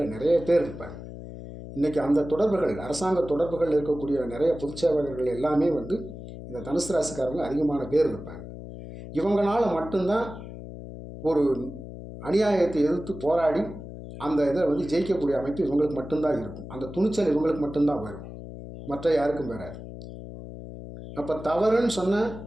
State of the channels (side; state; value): left; noise; hum, 12 dB below the sound